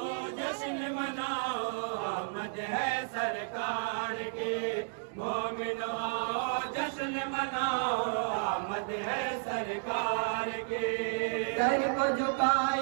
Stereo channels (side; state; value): left; silent; digital silence